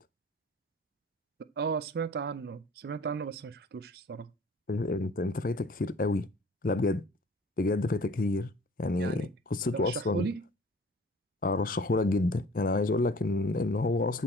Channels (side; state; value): both; normal; correlation 0.48